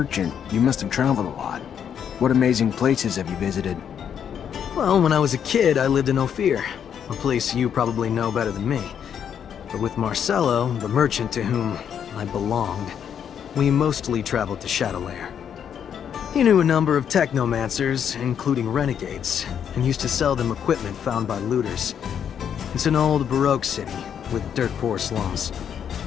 you must have traveled a lot. What amazing places have you visited? Well, when I was a kid, I lived in Ophir, a place you probably know better than me. But with Marcello, the merchant to whom I belonged, we mostly traveled to Shadowlair. He knew a number of Technomancers, including renegades, and used to sell them equipment found by looters. It's an old Baroque city, with dirt-poor slums.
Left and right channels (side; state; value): right; quieter; 8.4 dB